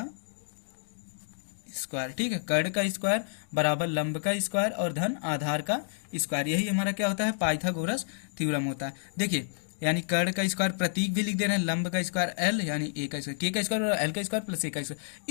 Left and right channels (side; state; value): right; silent; digital silence